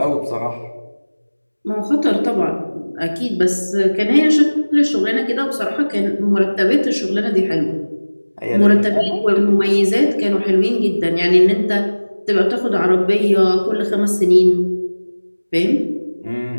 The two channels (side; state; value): both; inverted; correlation -1.00